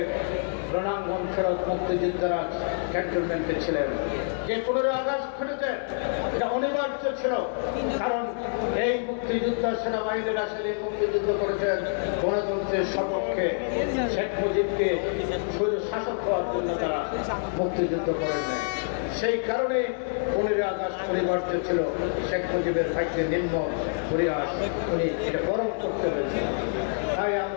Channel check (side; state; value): right; silent; 60 dB below the other